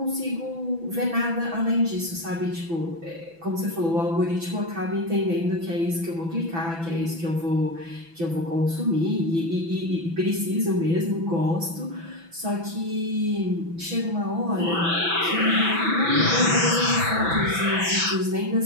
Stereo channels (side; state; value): left; late; 6.0 ms